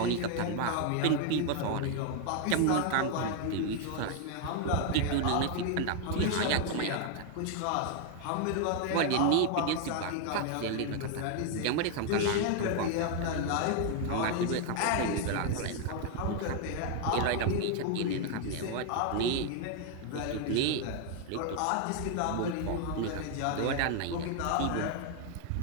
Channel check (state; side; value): different; both; correlation 0.00